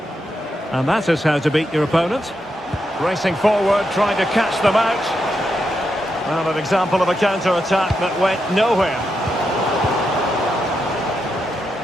And that is how to beat your opponent. Racing forward, trying to catch them out. Well, an example of a counter-attack that went nowhere.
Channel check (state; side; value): normal; both; correlation 0.84